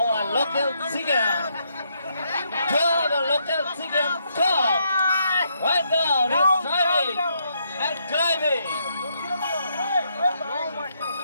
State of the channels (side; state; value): both; inverted; correlation -0.76